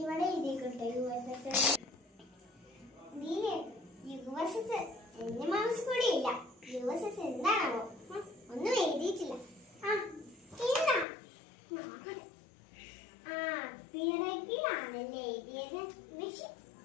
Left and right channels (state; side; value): drops out; right; at 11.1 s